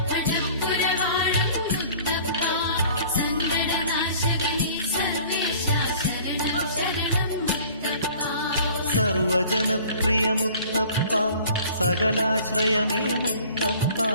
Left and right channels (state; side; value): inverted; both; correlation -0.49